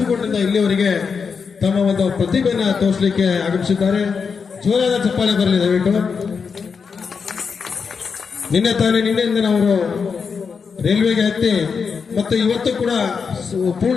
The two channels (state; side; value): quieter; right; 5.7 dB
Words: ಇಲ್ಲಿಯವರೆಗೆ ತಮ್ಮ ಒಂದು ಪ್ರತಿಭೆಯನ್ನು ತೋರಿಸಲಿಕ್ಕೆ ಆಗಮಿಸಿದ್ದಾರೆ. ಜೋರಾದ ಚಪ್ಪಾಳೆ ಬರಲಿ ದಯವಿಟ್ಟು. ನಿನ್ನೆಯಿಂದ ಅವರು ರೈಲ್ವೆಗೆ ಹತ್ತಿ ಮತ್ತು ಇವತ್ತು ಕೂಡ ಪೂರ್ಣ